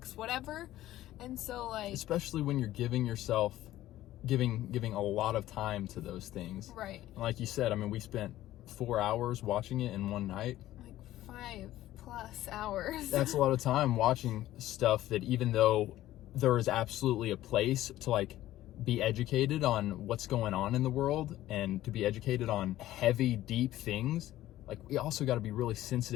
whatever. And so, like, especially when you're giving yourself, giving a lot of time to those things. Right. And like you said, I mean, we spent 4 hours watching it in one night. Like 5+ hours. That's a lot of time watching stuff that, even though there is absolutely a place to like be educated on what's going on in the world and to be educated on heavy, deep things, like we also got to be really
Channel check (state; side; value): quieter; right; 14.6 dB